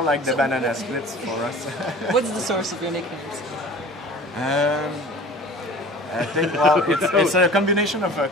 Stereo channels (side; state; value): both; normal; correlation 0.42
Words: like the banana splits for us. What's the source of your nicknames? I think, well, it's a combination of a